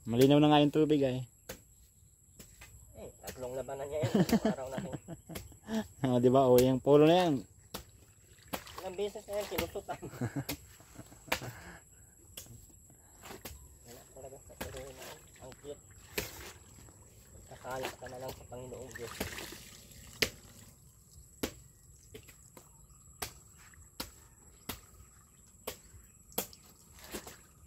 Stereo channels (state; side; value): identical; both; correlation 1.00